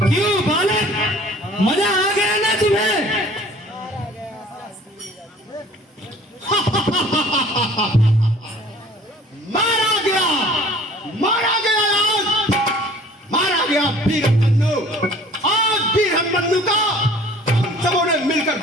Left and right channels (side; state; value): both; normal; correlation 0.50